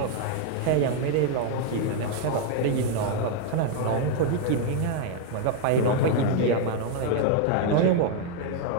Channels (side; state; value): both; different; correlation 0.00